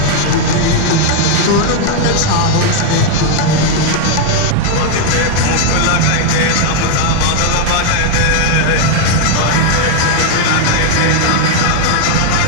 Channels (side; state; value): both; different; correlation 0.00